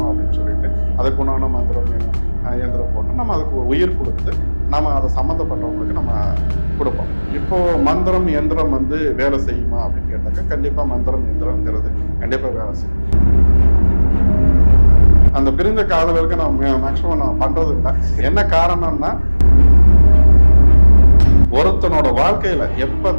அப்படின்னு சொல்லிட்டு அதுக்குண்டான மந்திரம் இயந்திரம் போட்டு நம்ம அதுக்கு உயிர் கொடுத்து நம்ம அதை சம்மந்தப்பட்டவங்களுக்கு நம்ம கொடுப்போம். இப்போ மந்திரம் எந்திரம் வேலை செய்யுமா அப்படின்னு கேட்டாக்கா கண்டிப்பாக மந்திரம் எந்திரங்கிறது கண்டிப்பாக வேலை செய்யும். அந்த பிரிந்த காதலருக்கு நான் மேக்சிமம் நான் பண்றது இல்லை. என்ன காரணம்னா ஒருத்தனோட வாழ்க்கையில எப்ப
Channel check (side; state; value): both; inverted; correlation -1.00